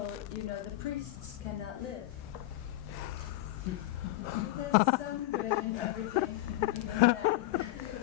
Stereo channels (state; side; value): quieter; right; 16.7 dB